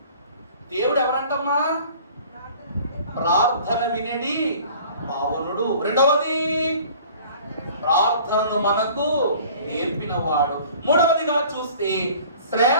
దేవుడు ఎవరంటమ్మా? ప్రార్థన వినేది పావనుడు. రెండవది ప్రార్థనను మనకు నేర్పినవాడు. మూడవదిగా చూస్తే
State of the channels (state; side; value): inverted; both; correlation -0.48